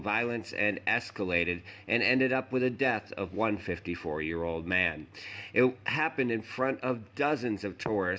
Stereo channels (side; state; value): both; identical; correlation 1.00